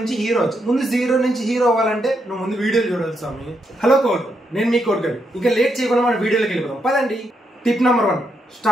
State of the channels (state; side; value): normal; both; correlation 0.80